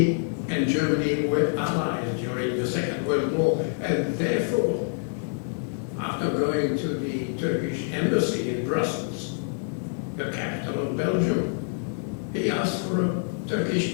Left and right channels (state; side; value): silent; right; digital silence